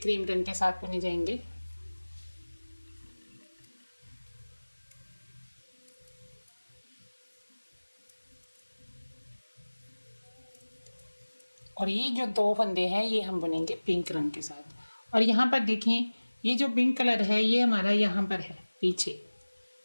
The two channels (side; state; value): both; inverted; correlation -1.00